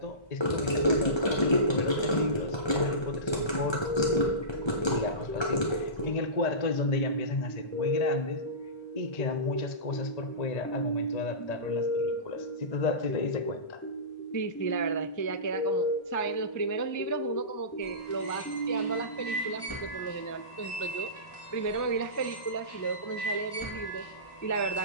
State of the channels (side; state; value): right; late; 1.3 ms